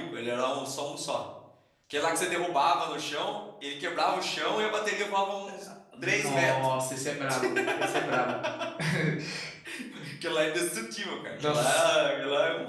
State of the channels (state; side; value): identical; both; correlation 1.00